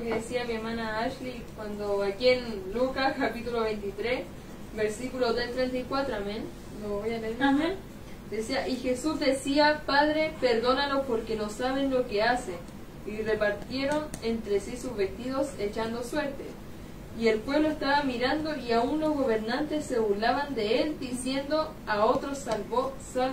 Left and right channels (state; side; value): identical; both; correlation 1.00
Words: que decía mi hermana Ashley cuando aquí en Lucas capítulo 23, versículo del 34, amén. Lo voy a leer. Amén. Decía, y Jesús decía, Padre, perdónalos porque no saben lo que hacen. Y repartieron entre sí sus vestidos echando suerte. Y el pueblo estaba mirando, y aún los gobernantes se burlaban de él, diciendo, a otros salvó,